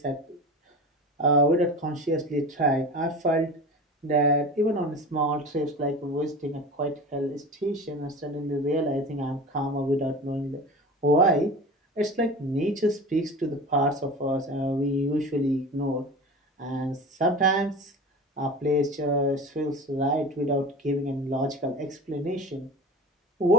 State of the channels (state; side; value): normal; both; correlation 0.32